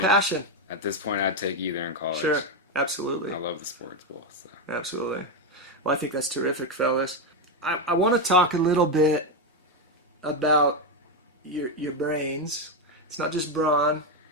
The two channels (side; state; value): both; normal; correlation 0.07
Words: passion. At this point, I'd take either in college. Sure, absolutely. I love the sports ball. So. Absolutely. Well, I think that's terrific, fellas. I want to talk a little bit about your brains. It's not just brawn.